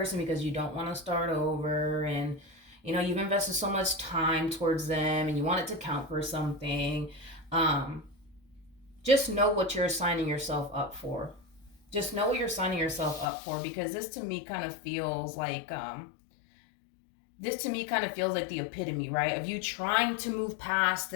because you don't want to start over, and you've invested so much time towards them and you want it to count for something, just know what you're signing yourself up for. Just know what you're signing yourself up for, because this to me kind of feels like the epitome, right, of you trying to move past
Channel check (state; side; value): drops out; right; at 13.2 s